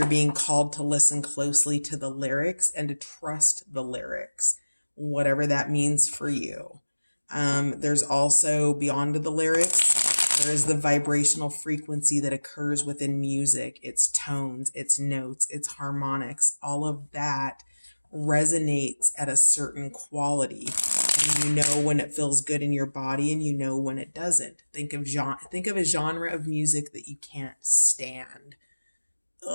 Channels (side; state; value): both; inverted; correlation -1.00